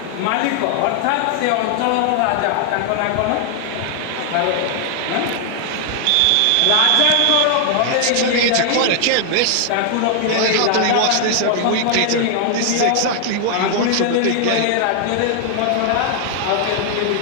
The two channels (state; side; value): different; both; correlation 0.00